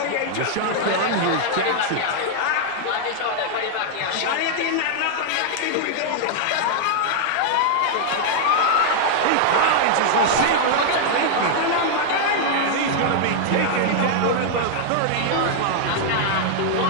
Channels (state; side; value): different; both; correlation -0.01